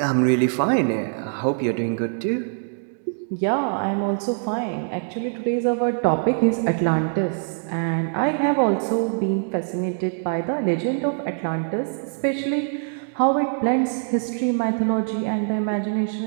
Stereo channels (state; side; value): silent; left; digital silence